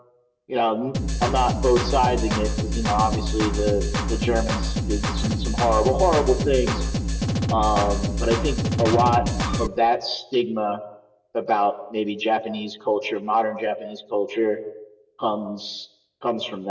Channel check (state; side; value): identical; both; correlation 1.00